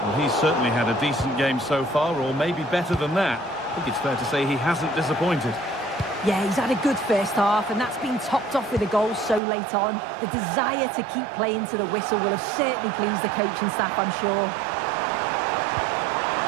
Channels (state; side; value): drops out; left; at 9.4 s